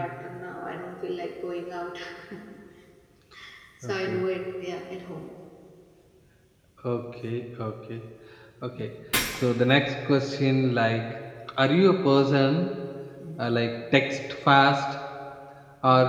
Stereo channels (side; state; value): both; identical; correlation 1.00